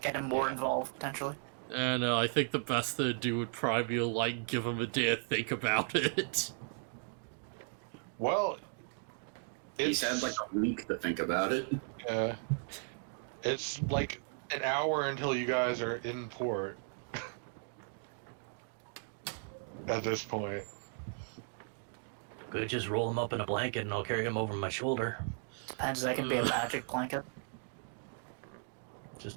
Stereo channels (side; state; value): left; silent; 54 dB below the other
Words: Get him more involved potentially. And I think the best thing to do would probably be to, like, give him a day to think about it. Well, He's had like a week to think about it. it's like an hour until you guys are in port. At this point. Could just roll him up in a blanket and I'll carry him over my shoulder. Depends, that can be a magic blanket.